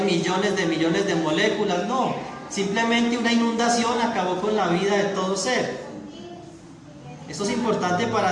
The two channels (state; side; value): identical; both; correlation 1.00